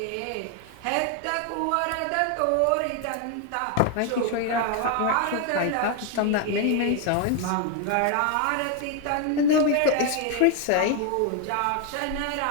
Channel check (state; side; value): different; both; correlation 0.01